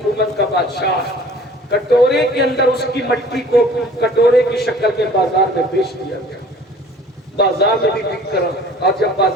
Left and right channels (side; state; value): both; normal; correlation 0.49